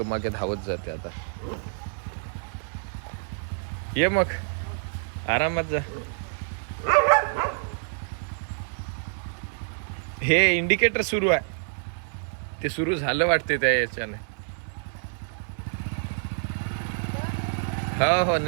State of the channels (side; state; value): left; silent; 60 dB below the other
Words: मागे धावत जाते आता. ये मग, आरामात जा. हे इंडिकेटर सुरू आहे, ते सुरू झालं वाटते त्या याच्याने. हो,